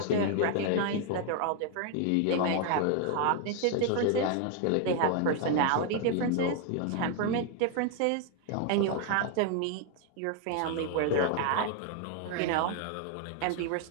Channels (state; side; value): different; both; correlation 0.01